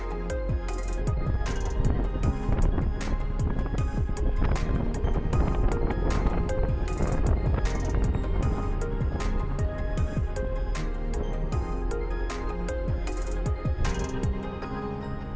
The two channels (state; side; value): identical; both; correlation 1.00